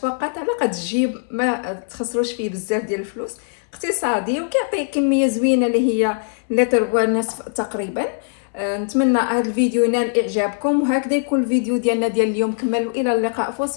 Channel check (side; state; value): right; silent; 65 dB below the other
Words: على قد الجيب، ما تخسروش فيه بزاف ديال الفلوس، اقتصادي وكيعطي كميه زوينه اللي هي لتر ونصف تقريبا. نتمنى هذا الفيديو ينال اعجابكم، وهكذا يكون الفيديو ديالنا ديال اليوم كمل، والى اللقاء في